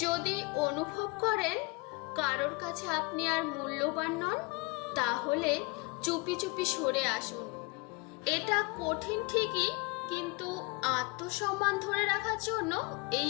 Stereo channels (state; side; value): quieter; right; 27.6 dB